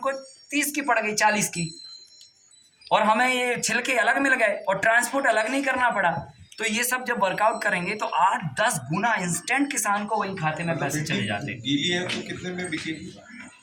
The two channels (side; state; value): both; identical; correlation 1.00